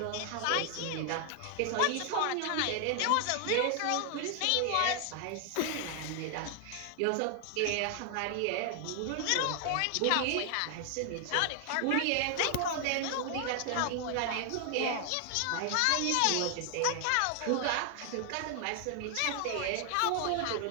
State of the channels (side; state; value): both; different; correlation 0.00